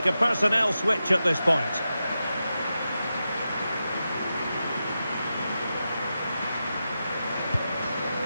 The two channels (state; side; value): inverted; both; correlation -0.90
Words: a personnel switch at this point.